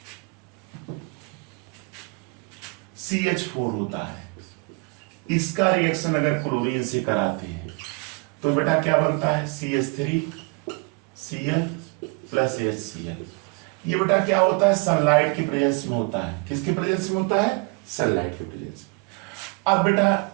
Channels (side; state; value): left; quieter; 29.9 dB